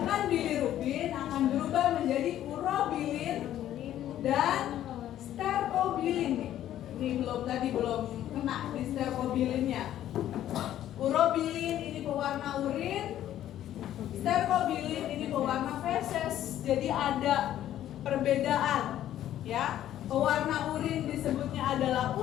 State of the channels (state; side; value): quieter; right; 12.1 dB